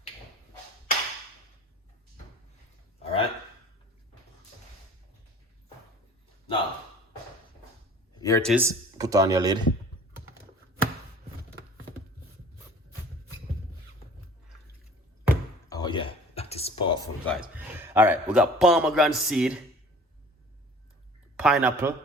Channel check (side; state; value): both; normal; correlation 0.47